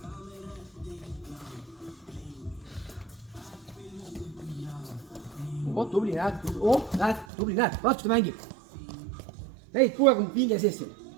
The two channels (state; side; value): drops out; left; at 7.2 s